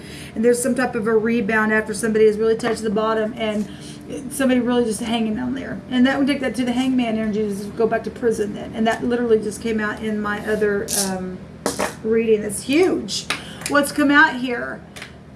And there's some type of a rebound after somebody has really touched the bottom and somebody really just hanging down there. And that would take that to the hangman energy, just go back to prison then. And that literally just came out in my other reading. That's huge. What's come out here?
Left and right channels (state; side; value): identical; both; correlation 1.00